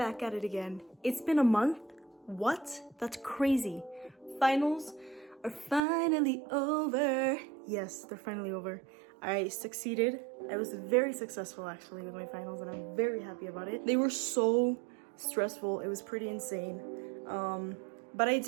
at it again. It's been a month? What? That's crazy. Finals are finally over. Yes, they're finally over. I succeeded. I was very successful actually with my finals and I'm very happy about it. They were so stressful, it was pretty insane. But I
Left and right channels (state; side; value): drops out; left; at 5.8 s